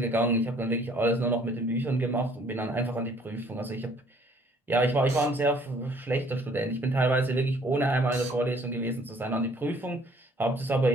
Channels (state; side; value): normal; both; correlation 0.59